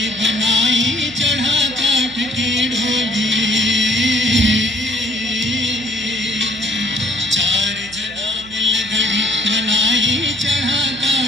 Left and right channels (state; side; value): noise; right; hum, 20 dB below the sound